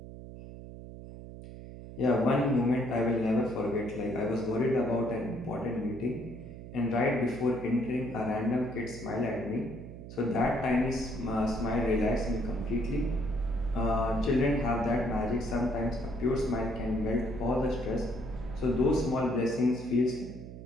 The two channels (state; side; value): noise; right; hum, 13 dB below the sound